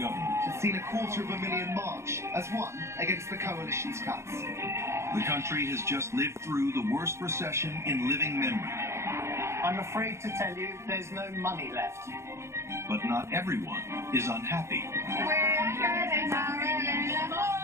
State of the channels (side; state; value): left; late; 0.13 ms